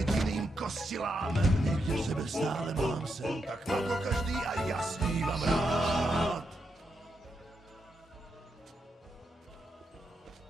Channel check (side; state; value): both; normal; correlation 0.83